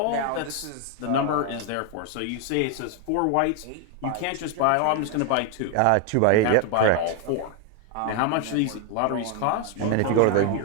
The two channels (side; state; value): both; different; correlation 0.01